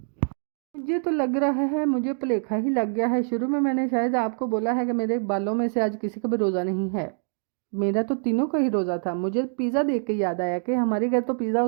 मुझे तो लग रहा है मुझे भुलेखा ही लग गया है। शुरू में मैंने शायद आपको बोला है कि मेरे बालों में से आज किसी का भी रोज़ा नहीं है। मेरा तो तीनों का ही रोज़ा था। मुझे पिज़्ज़ा देख के याद आया कि हमारे घर तो पिज़्ज़ा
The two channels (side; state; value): left; silent; digital silence